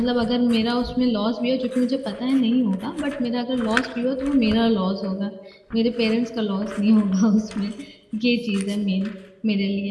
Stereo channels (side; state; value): both; identical; correlation 1.00